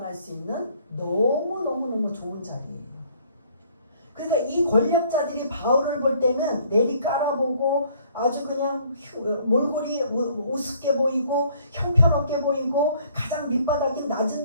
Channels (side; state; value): both; inverted; correlation -0.60